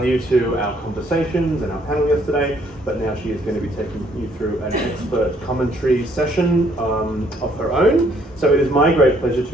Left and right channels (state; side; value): normal; both; correlation 0.66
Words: to our conversations and our panel yesterday, but now she is going to be taking you through an expert commentary session of her own. So it is my great pleasure